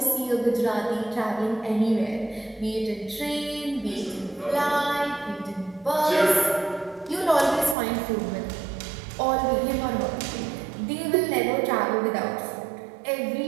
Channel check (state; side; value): drops out; left; at 7.8 s